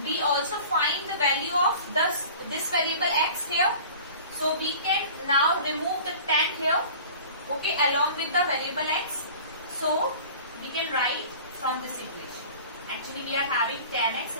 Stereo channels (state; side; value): inverted; both; correlation -0.42